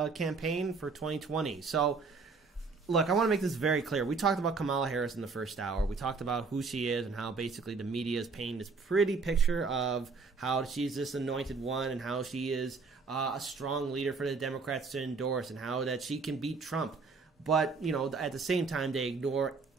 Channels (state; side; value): quieter; left; 4.5 dB